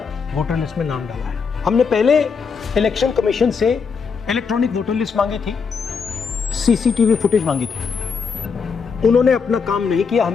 वोटर लिस्ट में नाम डाला है। हमने पहले इलेक्शन कमीशन से इलेक्ट्रॉनिक वोटर लिस्ट मांगी थी, सीसीटीवी फुटेज मांगी थी, उन्होंने अपना काम नहीं किया,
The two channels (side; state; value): right; quieter; 5.6 dB